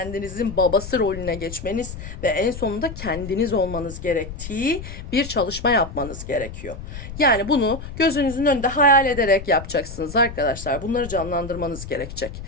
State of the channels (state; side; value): noise; left; rumble, 11 dB below the sound